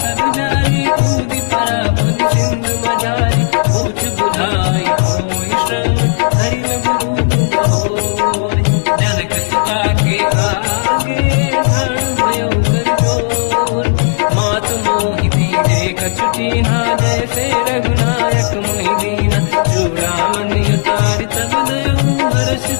जारी, कूदी परा पुन सिंधु मजारी, पूछ बुझाई कोई श्रम, हरि लघु रूप बहोरी, जनक सुता के आगे ठाड़ भयो कर जोर, मात मोहि दीजे कछ कीन्हा, जैसे रघुनायक मोहि दीना, चूड़ामन उतार तब नयऊ, हर्ष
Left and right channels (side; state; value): right; silent; digital silence